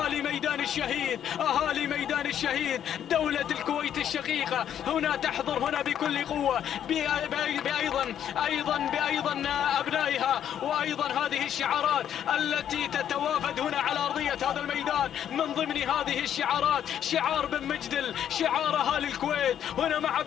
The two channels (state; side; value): quieter; right; 9.8 dB